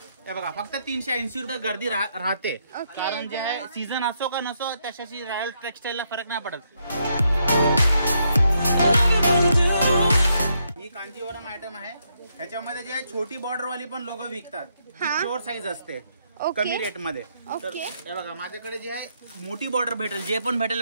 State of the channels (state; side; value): inverted; both; correlation -0.77